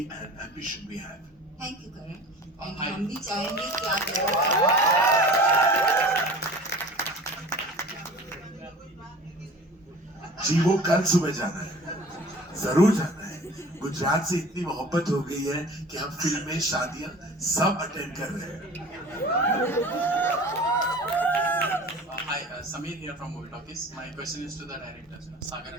an ambition we have. Thank you Karan. हम भी चाहेंगे कि आप जी, वो कल सुबह जाना है, जरूर जाना है। गुजरात से इतनी मोहब्बत हो गई है कि हम फिल्में, शादियां सब अटेंड कर रहे हैं। Hi, Samir here from Movie Talkies. My question is to the directors, Sagar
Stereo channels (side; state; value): both; normal; correlation 0.41